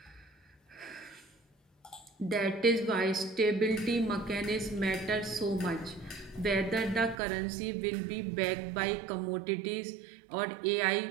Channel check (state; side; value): drops out; left; at 7.2 s